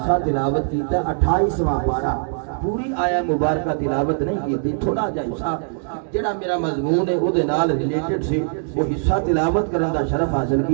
تلاوت کیتا 28واں پارہ پوری آیا مبارکہ تلاوت نہیں کی تھوڑا جہا حصہ جڑا میرا مضمون ہے او دے نال ریلیٹڈ سی وہ حصہ تلاوت کرن دا شرف حاصل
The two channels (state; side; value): silent; left; digital silence